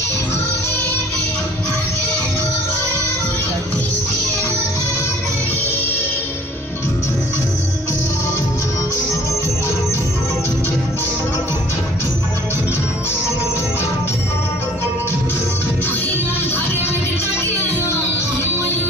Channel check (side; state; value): both; normal; correlation 0.53